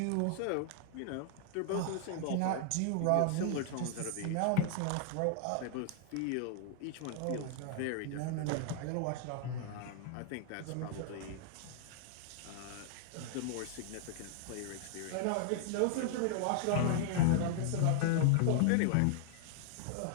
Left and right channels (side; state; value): both; different; correlation -0.01